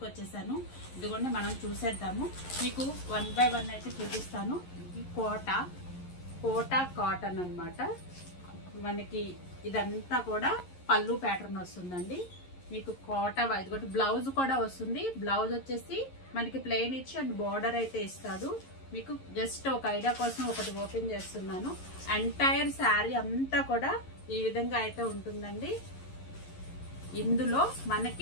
వచ్చేసాను. ఇదిగోండి మనం చూసేద్దాము. మీకు 1 by 1 అయితే చూపిస్తాను. ఇది కోటా కాటన్ అన్నమాట. మనకి ఇదంతా కూడా పళ్ళు ప్యాటర్న్ వస్తుందండి. మీకు కోట ఇదిగోటి బ్లౌజ్ కూడా వస్తుంది. బ్లౌజ్ వచ్చేసి మనకి ప్లెయిన్ ఇచ్చి అండ్ బార్డర్ అయితే ఇస్తాడు. మీకు జస్ట్ ఒక ఐడియా కోసం ఒకటి ఓపెన్ చేస్తున్నాను. ఎంటైర్ శారీ అంతా కూడా ఈ విధంగా అయితే ఉంటుందండి. ఇందులో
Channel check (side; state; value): right; late; 11 ms